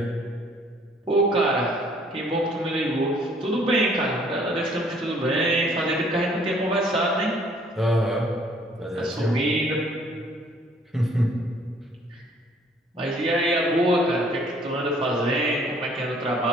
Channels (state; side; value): normal; both; correlation 0.60